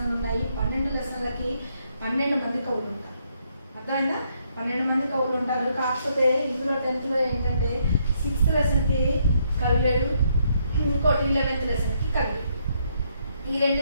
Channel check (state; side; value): inverted; both; correlation -0.73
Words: ఉన్నాయి. 12 లెసన్లకి 12 మంది కవులు ఉంటారు. అర్థమైందా? 12 మంది కవులు ఉంటారు. కాకపోతే ఇందులో 10th ఏంటంటే 6th లెసన్కి కవి లేడు, ఇంకోటి 11th లెసన్కి కవి. ఈ 2